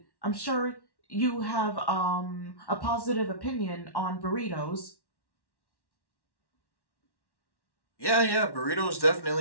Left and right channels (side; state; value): right; late; 1.1 ms